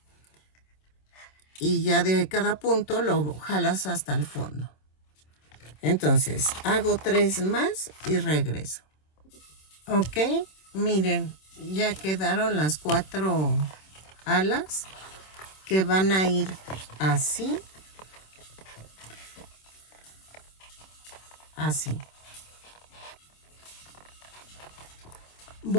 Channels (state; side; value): late; right; 26 ms